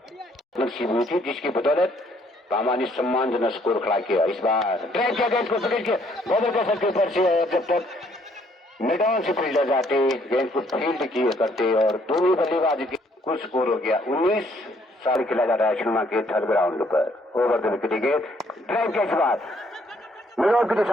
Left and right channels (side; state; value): both; normal; correlation 0.65